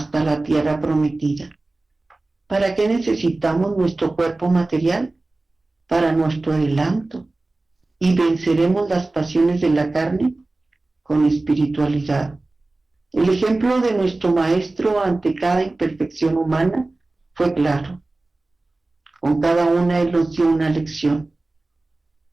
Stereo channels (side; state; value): left; quieter; 3.1 dB